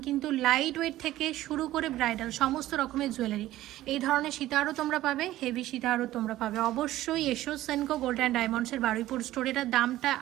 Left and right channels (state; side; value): quieter; left; 15.1 dB